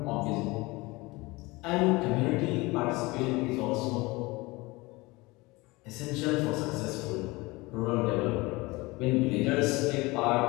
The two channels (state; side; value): quieter; right; 22.8 dB